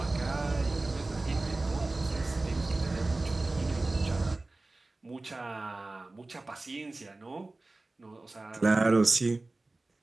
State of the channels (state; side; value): quieter; left; 3.1 dB